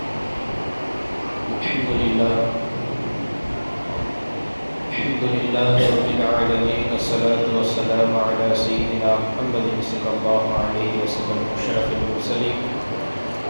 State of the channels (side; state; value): both; inverted; correlation -1.00